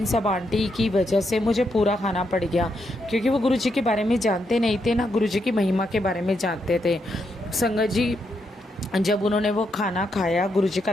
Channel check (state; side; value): normal; both; correlation 0.80